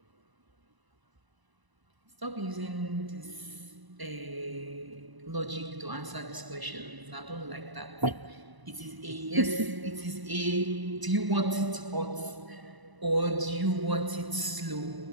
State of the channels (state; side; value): late; left; 1.0 ms